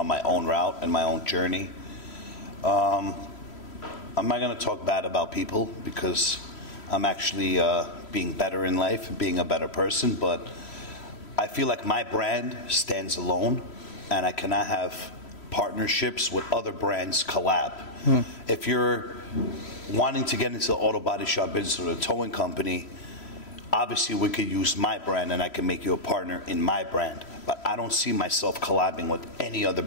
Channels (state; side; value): late; right; 3.1 ms